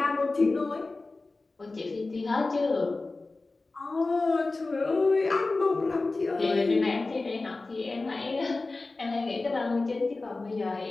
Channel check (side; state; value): right; quieter; 3.4 dB